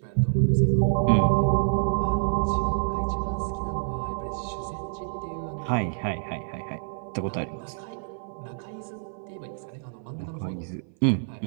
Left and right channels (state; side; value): silent; left; 57 dB below the other